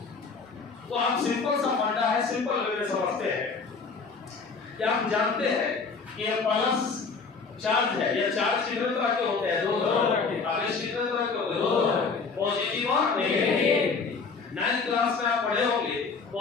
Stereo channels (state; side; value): quieter; right; 4.8 dB